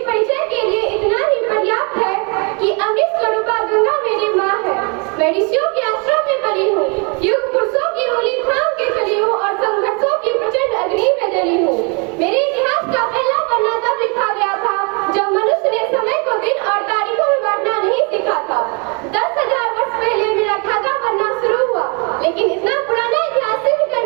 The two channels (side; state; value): left; quieter; 33.8 dB